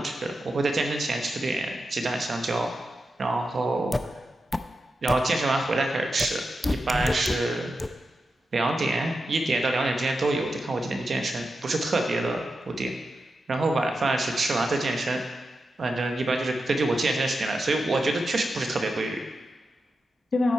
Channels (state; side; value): normal; both; correlation 0.89